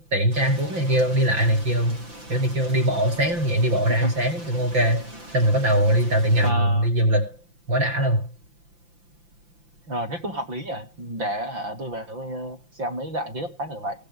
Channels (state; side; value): late; left; 5.8 ms